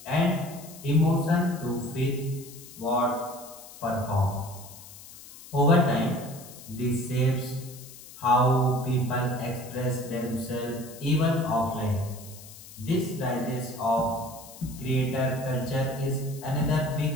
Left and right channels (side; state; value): left; noise; hiss, 17 dB below the sound